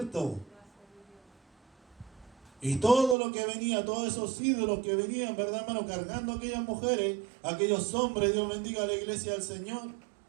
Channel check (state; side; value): drops out; left; at 3.2 s